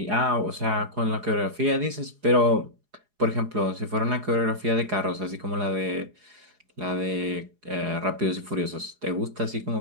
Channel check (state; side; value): late; left; 4.8 ms